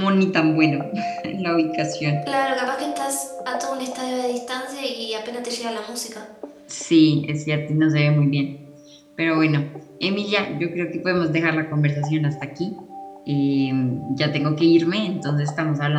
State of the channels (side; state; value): both; identical; correlation 1.00